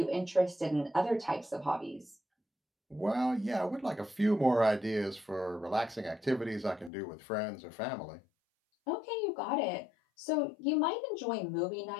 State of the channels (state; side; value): drops out; right; at 6.9 s